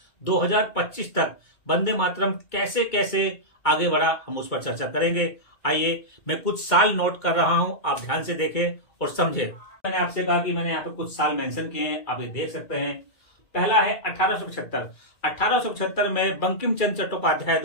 2025 तक वंदे मातरम कैसे कैसे आगे बढ़ा, हम उस पर चर्चा करेंगे। आइए, मैं कुछ साल नोट कर रहा हूं, आप ध्यान से देखें और समझें। मैंने आपसे कहा कि मैंने यहाँ पे कुछ साल मेंशन किए हैं, आप ये देख सकते हैं। पहला है 1875। 1875 में बंकिम चंद्र चट्टोपाध्याय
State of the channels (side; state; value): right; late; 2.2 ms